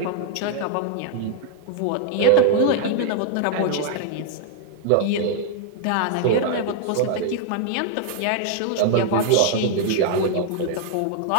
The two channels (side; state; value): both; different; correlation -0.01